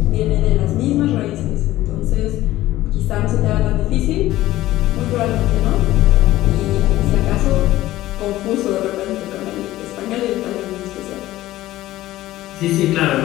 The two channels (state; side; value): quieter; right; 15.7 dB